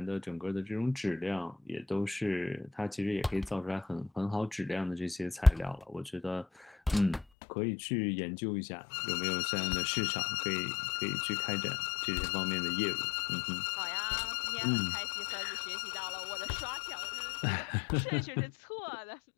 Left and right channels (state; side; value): drops out; right; at 7.2 s